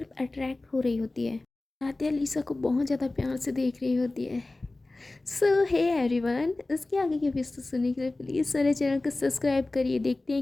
अट्रैक्ट हो रही होती है। आराध्या लिसा को बहुत ज़्यादा प्यार से देख रही होती है। सो हे एवरीवन, इसके आगे के एपिसोड सुनने के लिए प्लीज़ मेरे चैनल को सब्सक्राइब करिए, देखते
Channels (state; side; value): quieter; right; 3.0 dB